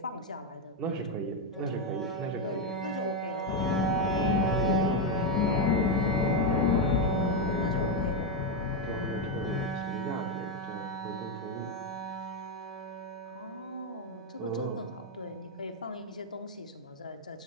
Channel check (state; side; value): normal; both; correlation 0.05